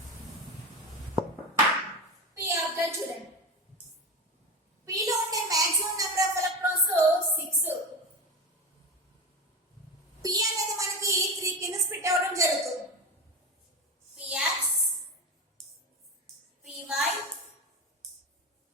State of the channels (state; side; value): normal; both; correlation 0.23